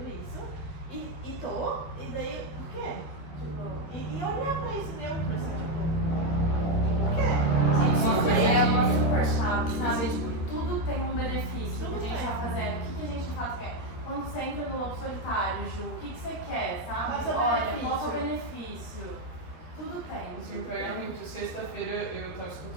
isso e tô, e daí, por quê? Tipo, e olhar pra isso neutro, assim, tipo, por quê? Uma coisa é uma super chave, sabe? Tipo, tudo tem um benefício Tudo que a gente tem. tá fazendo. O que a gente de fato quer? Quando você entra no lobo solitário, Ju, o que você quer, sabe? Qual é o seu Olha, benefício? qual é o benefício? Tudo tem. Isso me pega muito. Sexta-feira eu estava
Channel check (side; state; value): right; late; 13 ms